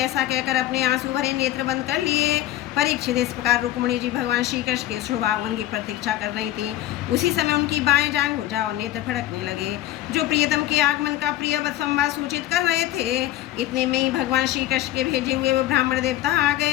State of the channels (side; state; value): right; quieter; 14.2 dB